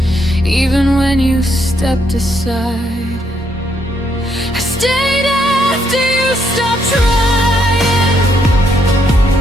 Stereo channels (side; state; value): both; normal; correlation 0.75